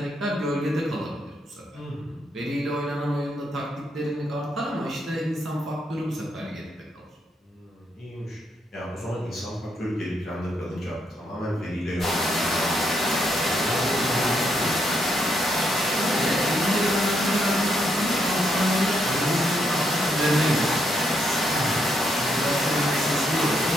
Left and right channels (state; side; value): normal; both; correlation 0.77